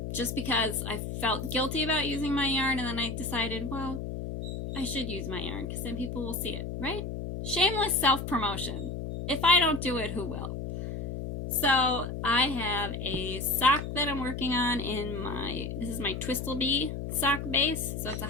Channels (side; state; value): left; noise; hum, 5 dB below the sound